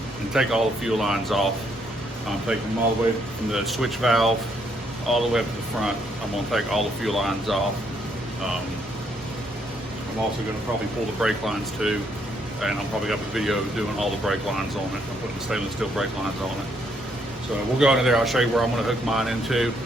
and take all the fuel lines off. Take them all the way from the switch valve all the way up to the front. I'm gonna take all the fuel lines off. I'm also gonna probably pull the brake lines too, and I'll probably have a video doing all the brake lines on it. I'm putting the stainless steel brake lines on it. So we'll go into there, I'll show you where I'm gonna hook mine into,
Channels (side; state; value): both; normal; correlation 0.72